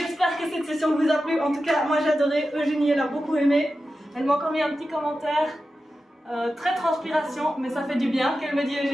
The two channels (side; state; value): both; normal; correlation 0.92